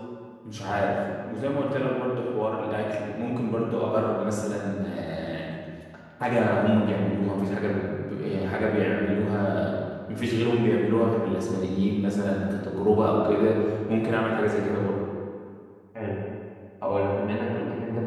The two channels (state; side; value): identical; both; correlation 1.00